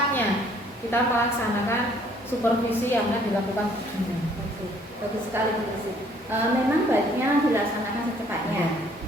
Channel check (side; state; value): both; normal; correlation 0.61